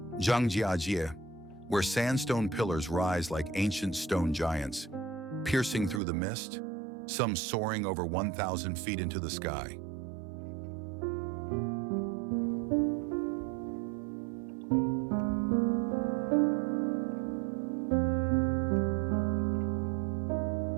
Zhangjiajie, where sandstone pillars rise like ancient stone giants, piercing through the mist, some soaring over 1,000 feet into the sky.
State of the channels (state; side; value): drops out; left; at 6.0 s